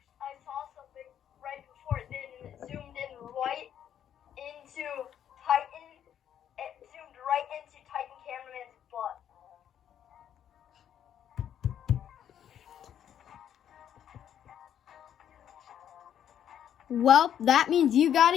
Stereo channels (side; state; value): right; quieter; 9.7 dB